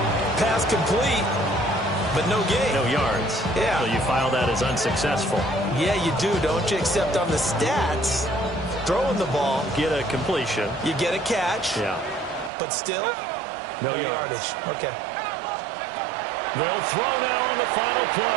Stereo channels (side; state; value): left; drops out; at 12.5 s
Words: Pass complete, but no gain. No yards. Yeah. So you file that as unsuccessful. Yeah, you do, don't you? Except on the stats, throwing the ball, Get a completion. you get a catch, Yeah. but still, No yardage. Okay. They'll throw now on the final